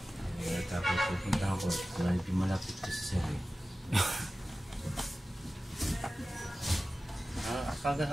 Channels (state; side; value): normal; both; correlation 0.95